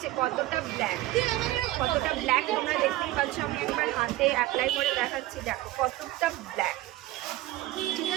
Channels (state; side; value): quieter; left; 17.0 dB